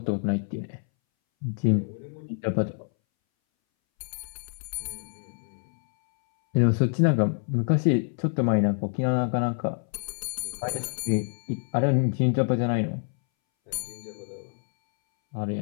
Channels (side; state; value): right; silent; 60 dB below the other